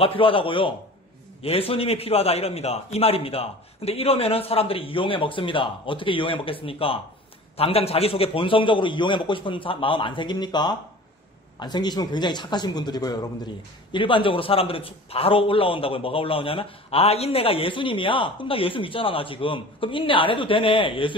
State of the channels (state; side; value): normal; both; correlation 0.41